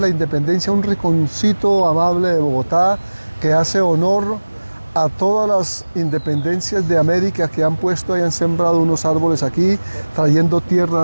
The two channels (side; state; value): both; inverted; correlation -1.00